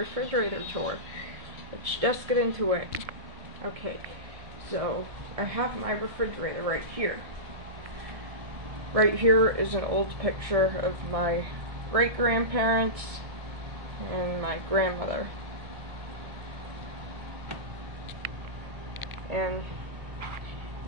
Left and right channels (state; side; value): late; left; 1.6 ms